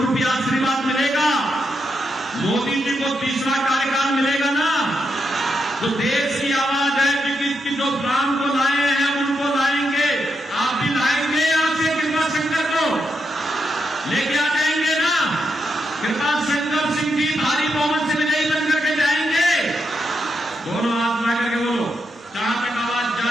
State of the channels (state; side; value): normal; both; correlation 0.83